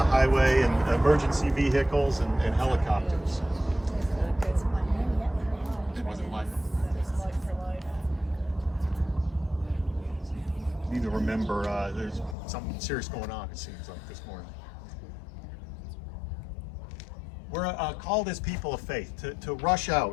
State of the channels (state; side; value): drops out; right; at 12.4 s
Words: highway and emergency vehicles and helicopters. It wasn't like need to remember there's something serious going on, it seems like, this morning. We're called as people of faith to rush